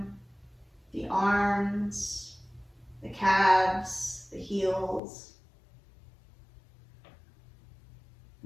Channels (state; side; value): drops out; right; at 5.0 s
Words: the arms, the calves, the heels.